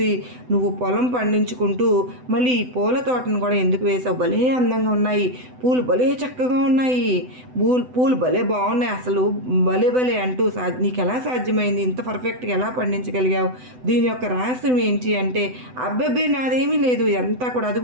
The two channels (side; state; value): left; late; 7.9 ms